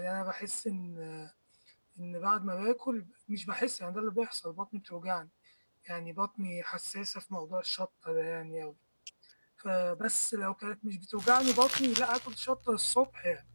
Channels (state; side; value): inverted; both; correlation -1.00